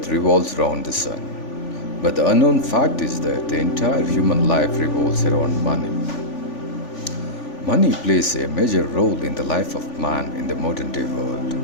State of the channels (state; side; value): late; right; 3.5 ms